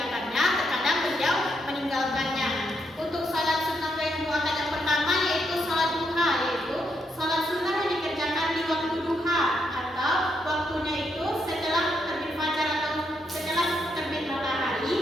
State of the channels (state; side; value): normal; both; correlation 0.79